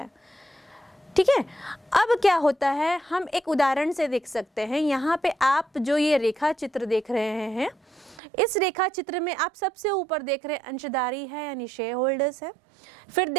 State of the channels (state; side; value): drops out; left; at 8.2 s